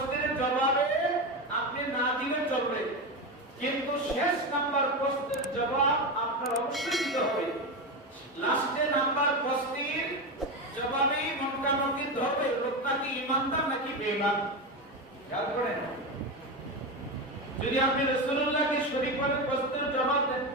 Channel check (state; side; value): normal; both; correlation 0.17